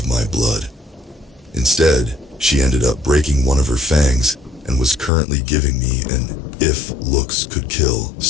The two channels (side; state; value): right; drops out; at 5.1 s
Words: my blood. Instead, she ended up breaking one of her fangs and was currently giving me an "if looks could kill"